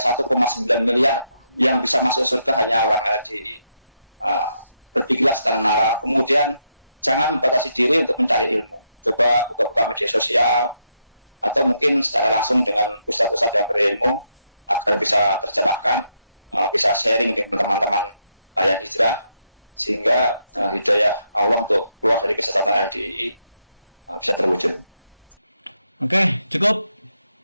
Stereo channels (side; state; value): both; inverted; correlation -0.79